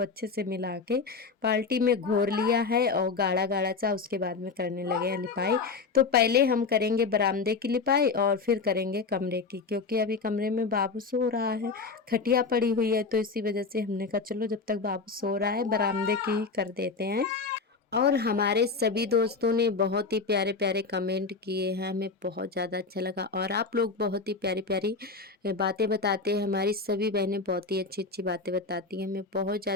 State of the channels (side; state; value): right; quieter; 4.5 dB